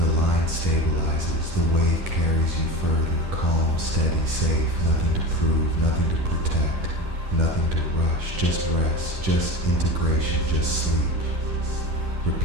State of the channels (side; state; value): left; late; 10 ms